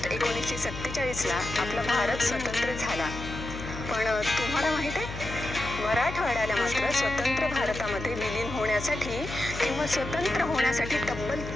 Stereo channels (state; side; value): noise; left; hum, 9 dB below the sound